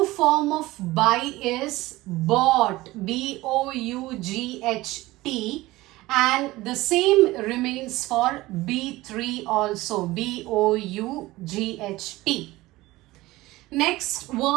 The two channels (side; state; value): left; quieter; 18.8 dB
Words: form of buy is bought, B-O-U-G-H-T, and the same remains for B3 also, B-O-U-G-H-T. Next